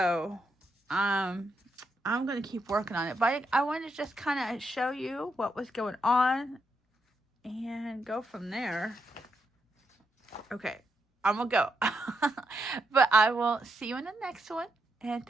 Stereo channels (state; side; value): normal; both; correlation 0.81